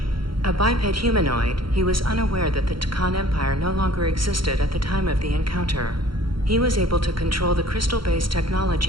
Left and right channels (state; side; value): late; left; 0.73 ms